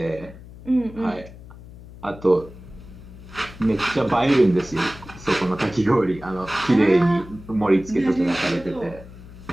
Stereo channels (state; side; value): noise; left; hum, 17 dB below the sound